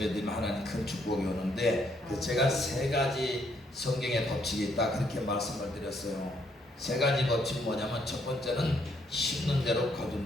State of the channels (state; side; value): normal; both; correlation 0.71